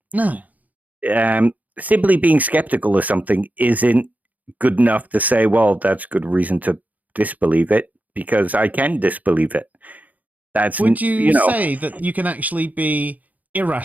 No. Simply being skeptical of something isn't good enough to say, well, that's good reason to disbelieve it, because I can disbelieve it. Would you say that you can actually be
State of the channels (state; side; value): late; left; 0.078 ms